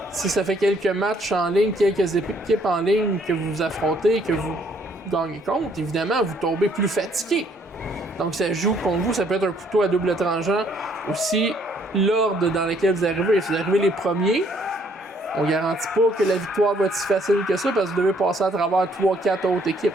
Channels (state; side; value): normal; both; correlation 0.65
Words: si ça fait quelques matchs en ligne, quelques équipes en ligne que vous affrontez, que vous gagnez contre, évidemment, vous tombez plus fatigué. Donc, ça joue contre vous, ça peut être un couteau à double tranchant. Aussi, l'ordre dans lequel vous arrivez. Si vous arrivez les premiers, on garantit pas que la victoire va être si facile que ça parce que vous devez passer à travers 3-4 autres